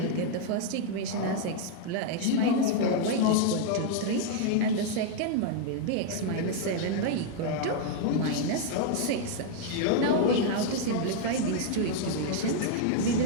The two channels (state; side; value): different; both; correlation 0.00